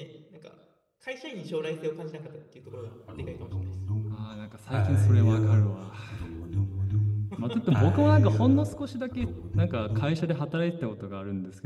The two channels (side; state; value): both; identical; correlation 1.00